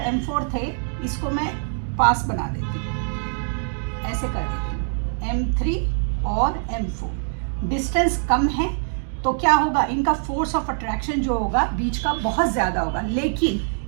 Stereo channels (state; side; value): silent; left; digital silence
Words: m4 थे इसको मैं पास बना देती हूँ, ऐसे कर देती हूँ, m3 और m4 डिस्टेंस कम है तो क्या होगा? इनका फोर्स ऑफ अट्रैक्शन जो होगा बीच का बहुत ज्यादा होगा, लेकिन